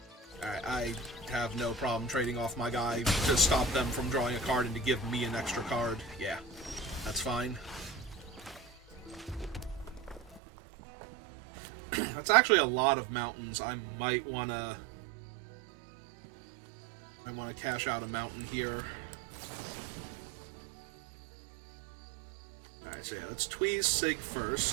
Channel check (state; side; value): drops out; left; at 10.4 s